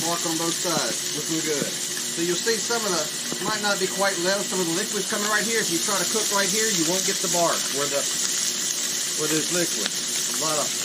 bark on both sides. Looking good. So you'll see some of the, might not be quite level, some of the liquid's coming right here. If you try to cook right here, you won't get the bark where there's liquid. A lot of.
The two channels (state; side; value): identical; both; correlation 1.00